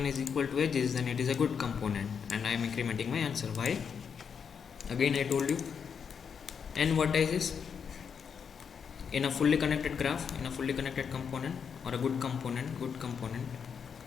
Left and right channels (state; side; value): quieter; right; 6.8 dB